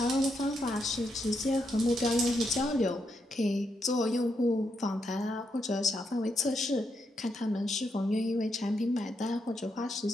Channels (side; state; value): both; normal; correlation 0.81